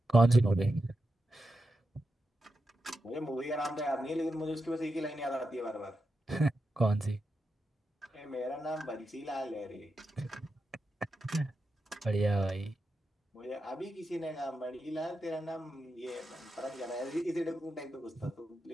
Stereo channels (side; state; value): both; normal; correlation 0.88